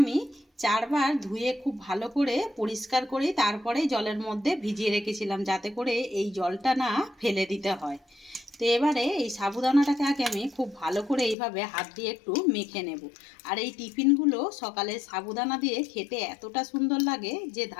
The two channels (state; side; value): drops out; right; at 11.4 s